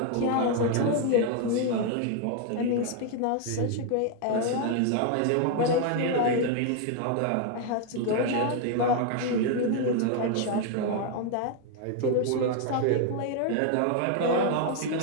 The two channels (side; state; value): both; different; correlation 0.00